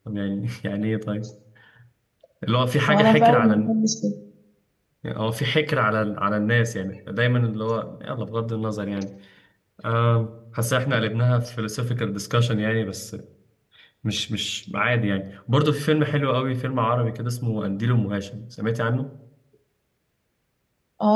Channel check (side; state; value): both; identical; correlation 1.00